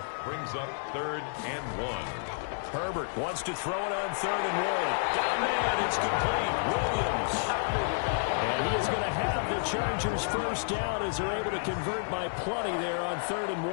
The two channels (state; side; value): silent; right; digital silence